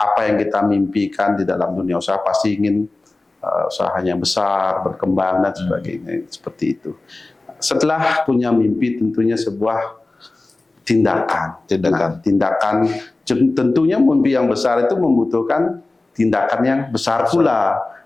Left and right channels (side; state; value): right; quieter; 3.1 dB